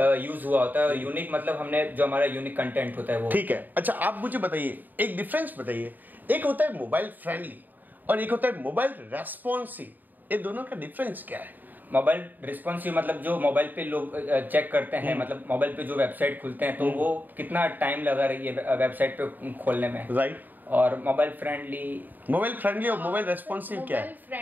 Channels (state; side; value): late; left; 0.087 ms